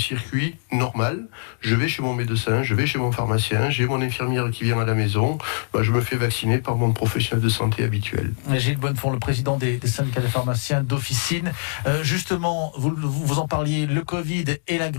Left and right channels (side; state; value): right; silent; digital silence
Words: normal. Je vais chez mon médecin, je vais chez mon pharmacien, j'ai mon infirmière qui vient à la maison, je me fais vacciner par mon professionnel de santé habituel. Gilles Bonnefond, le président des syndicats de pharmaciens d'officine. Justement, vous en parliez, le Covid et la